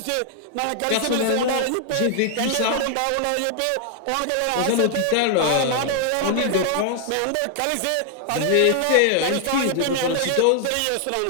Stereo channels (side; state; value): both; different; correlation 0.00